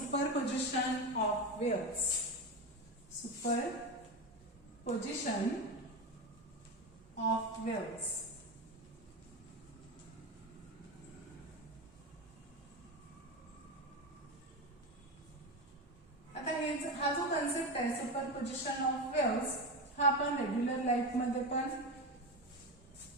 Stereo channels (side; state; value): both; normal; correlation 0.19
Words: of waves. Superposition of waves. आता हा जो concept आहे superposition of waves हा आपण रेग्युलर लाईफ मध्ये पण